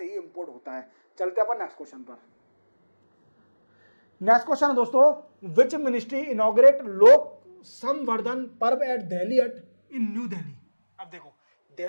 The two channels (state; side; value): inverted; both; correlation -1.00